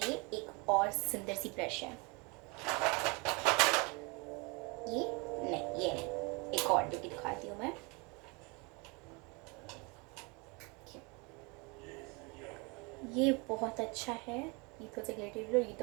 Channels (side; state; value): left; quieter; 29.4 dB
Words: एक और सुंदर सी ब्रश है, ये नहीं, एक और जो कि दिखाती हूँ मैं। ये बहुत अच्छा है, ये थोड़ा सा ग्लिटरी और